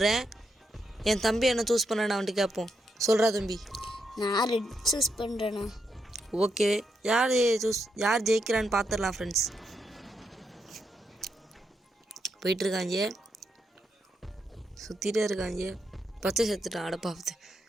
என் தம்பி என்ன சூஸ் பண்ணேன்னு அவன்ட்டு கேட்போம். சொல்கிறா தம்பி? நான் ரெட் சூஸ் பண்ணுறேண்ணா. ஓகே, யார் ஜெயிக்கிறான்னு பார்த்துடலாம் ஃப்ரெண்ட்ஸ். போயிட்டுருக்காங்க, சுற்றிட்டே இருக்காங்க. பச்சை செத்துட்டான். அடப்பாவது,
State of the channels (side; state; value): both; normal; correlation 0.82